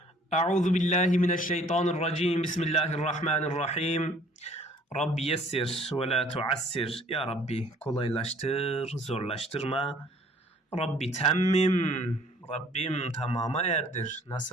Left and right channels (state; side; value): normal; both; correlation 0.56